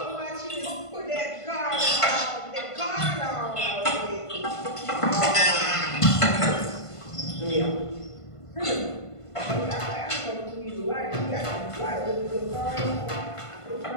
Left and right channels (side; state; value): right; late; 1.5 ms